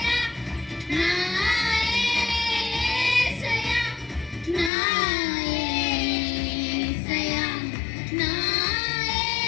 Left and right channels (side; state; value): right; drops out; at 4.7 s